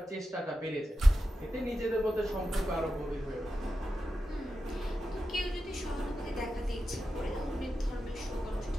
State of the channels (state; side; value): normal; both; correlation 0.90